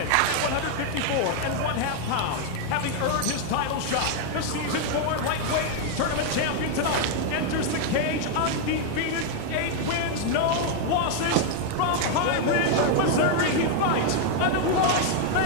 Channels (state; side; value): different; both; correlation 0.00